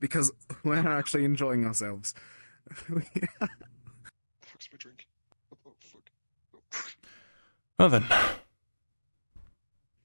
because we're actually enjoying ourselves. Well then.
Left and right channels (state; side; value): inverted; both; correlation -1.00